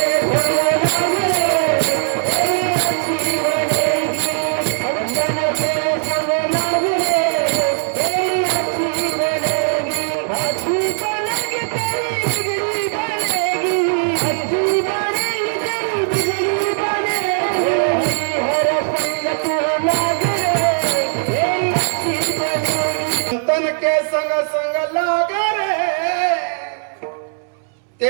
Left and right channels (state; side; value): silent; left; 67 dB below the other